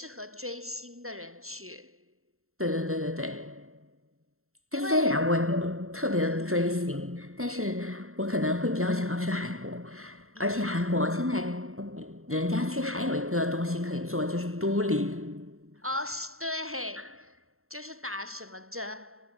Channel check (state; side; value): late; left; 0.63 ms